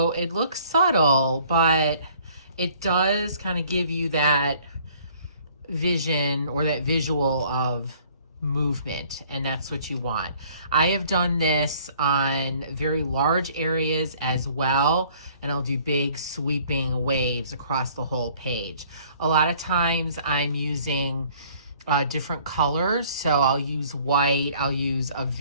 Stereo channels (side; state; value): both; inverted; correlation -0.57